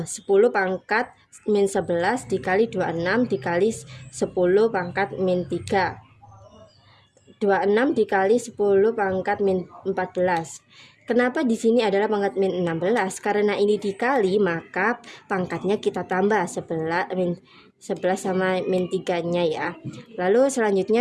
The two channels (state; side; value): identical; both; correlation 1.00